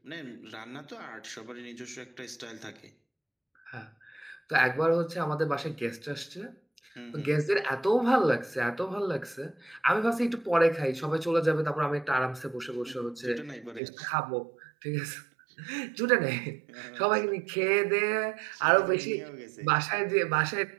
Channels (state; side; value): drops out; left; at 13.8 s